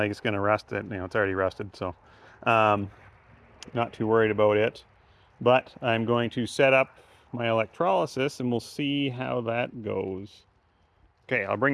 it's going to rust it. You know, it's already rusted, so not too worried about it. But I'm going to set up my electrolysis and we'll see how that goes. Okay, I'll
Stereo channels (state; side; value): identical; both; correlation 1.00